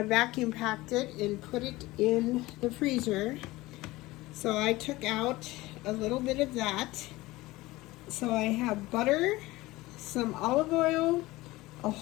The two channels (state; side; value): quieter; right; 19.4 dB